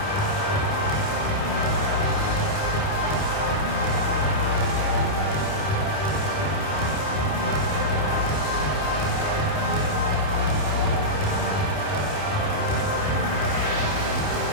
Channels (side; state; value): right; late; 28 ms